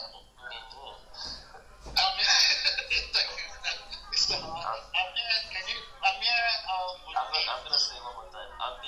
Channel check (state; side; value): identical; both; correlation 1.00